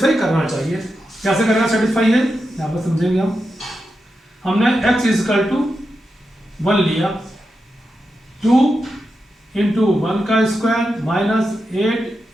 करना चाहिए। कैसे करना सेटिस्फाई है, यहाँ पर समझेंगे हम। हमने x इज इक्वल टू 1 लिया, 2 इंटू 1 का स्क्वायर माइनस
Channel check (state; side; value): normal; both; correlation 0.88